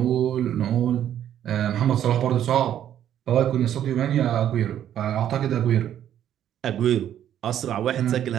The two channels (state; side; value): quieter; left; 10.6 dB